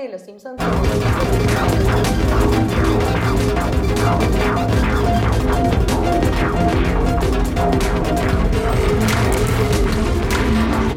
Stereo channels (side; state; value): both; identical; correlation 1.00